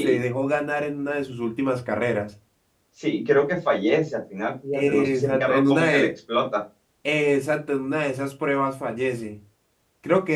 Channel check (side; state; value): both; identical; correlation 1.00